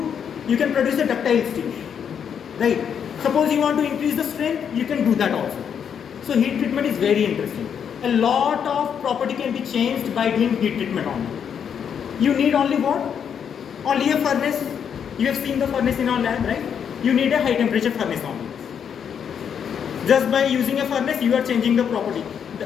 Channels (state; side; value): quieter; right; 7.8 dB